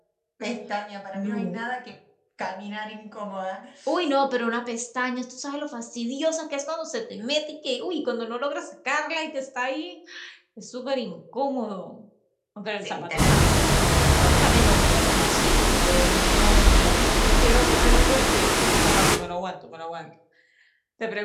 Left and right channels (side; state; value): both; identical; correlation 1.00